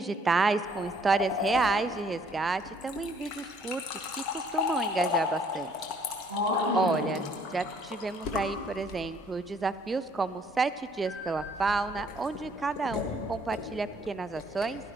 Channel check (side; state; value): both; normal; correlation 0.62